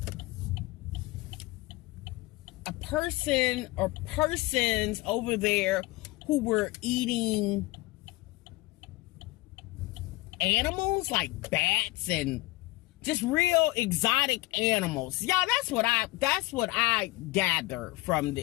a person or persons over there who were eating animals like bats and just real exotic animals. Y'all, that's what I gather from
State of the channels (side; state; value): right; quieter; 20.8 dB